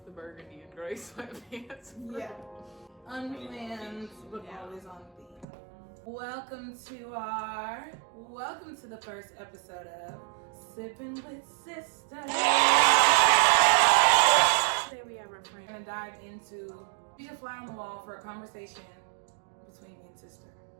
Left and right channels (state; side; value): drops out; left; at 5.5 s